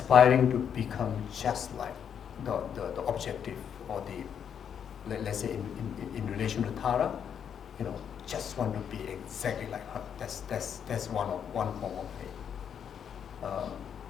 to become just like the objective, or let's say in relation to Tara, just want to be exactly like her. That's one form of faith.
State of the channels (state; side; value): quieter; right; 8.1 dB